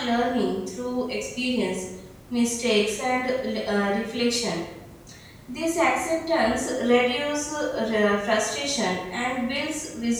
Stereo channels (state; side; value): identical; both; correlation 1.00